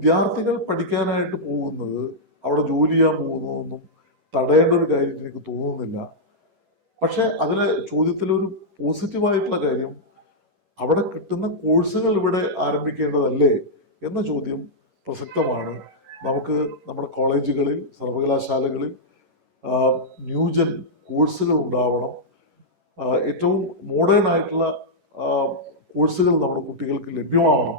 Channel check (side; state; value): left; late; 11 ms